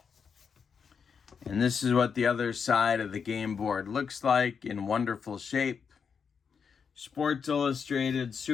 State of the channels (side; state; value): right; quieter; 6.3 dB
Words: this is what the other side of the game board looks like, in wonderful shape. Sports Illustrated